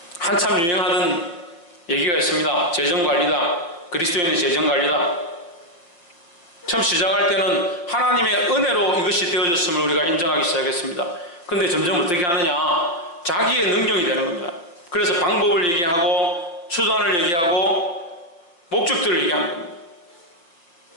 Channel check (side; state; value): right; late; 5.7 ms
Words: 한참 유행하던 얘기가 있습니다. 재정관리다. 그리스도인의 재정관리다. 처음 시작할 때는 하나님의 은혜로 이것이 되어졌음을 우리가 인정하기 시작했습니다. 근데 점점 어떻게 하느냐? 자기의 능력이 되는 겁니다. 그래서 방법을 얘기하고 수단을 얘기하고 목적들을 얘기하는 겁니다.